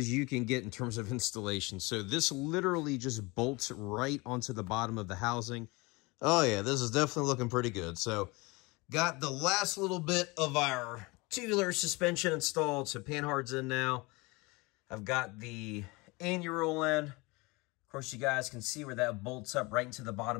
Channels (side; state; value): right; quieter; 25.1 dB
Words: you can get in terms of installation. So this literally just bolts right onto the bottom of the housing. Oh yeah, this is definitely looking pretty good. So got the last little bit of our tubular suspension installed, so panhard's in now. I've got the anti-roll in. Of course, you guys can see where that bolts up right into the